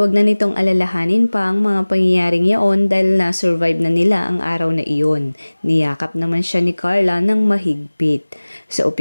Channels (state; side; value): inverted; both; correlation -1.00